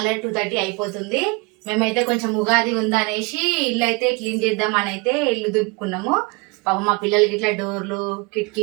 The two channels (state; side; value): quieter; left; 26.9 dB